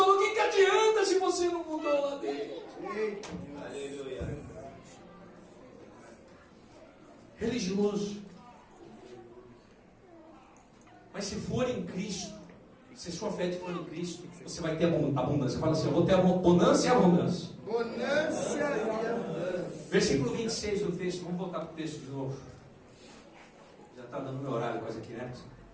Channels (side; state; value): both; identical; correlation 1.00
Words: o que adianta se você não mudou lá dentro? Aleluia. Religioso. Mas se for em Cristo, se sua fé for em Cristo, você vai ter abundância. Fala assim: eu vou ter bonança e abundância. Bonança e abundância. Versículo 26 do texto. Vamos voltar para o texto de novo. Já está dando meu horário quase aqui, né?